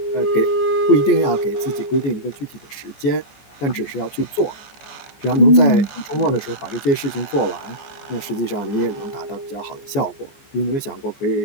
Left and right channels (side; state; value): right; late; 14 ms